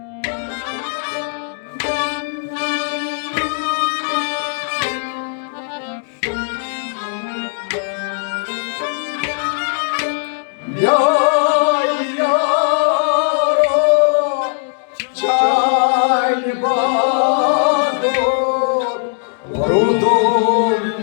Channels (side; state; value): right; silent; digital silence